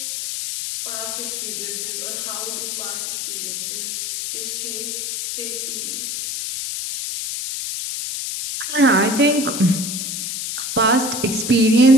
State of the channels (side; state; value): left; noise; hiss, 4 dB below the sound